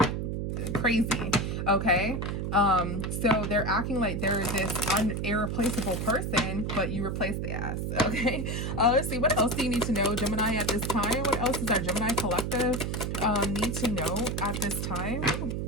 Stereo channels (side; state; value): right; noise; hum, 2 dB below the sound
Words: crazy, okay? So they're acting like they're this irreplaceable person, but you replace the ass, okay? Let's see, what else do you need to know, Gemini, at this time? What else does our Gemini collective need to know at this time?